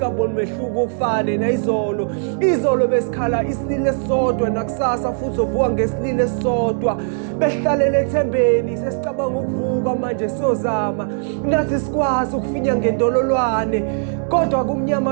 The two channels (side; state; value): left; silent; digital silence